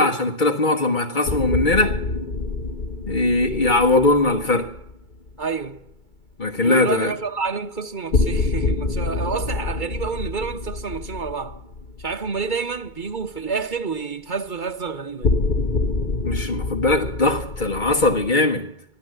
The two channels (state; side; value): late; right; 2.3 ms